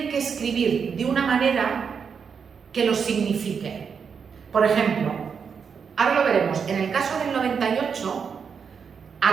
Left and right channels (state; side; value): quieter; left; 6.4 dB